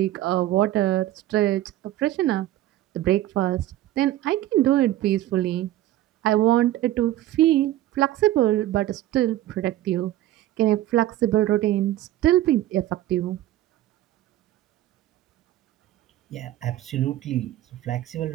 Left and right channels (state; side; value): quieter; left; 14.4 dB